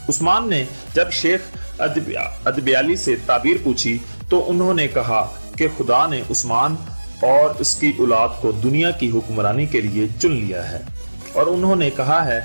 उस्मान ने जब शेख अदब्याली से ताबीर पूछी तो उन्होंने कहा कि खुदा ने उस्मान और उसकी औलाद को दुनिया की हुक्मरानी के लिए चुन लिया है, और उन्होंने कहा है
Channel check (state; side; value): inverted; both; correlation -1.00